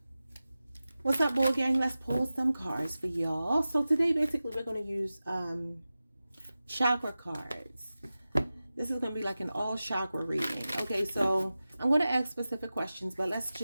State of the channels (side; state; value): both; inverted; correlation -0.95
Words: What's up, Bull Gang? Let's pull some cards for y'all. So today basically we're going to use chakra cards. This is going to be like an all chakra reading. Okay, so I'm going to ask specific questions, but let's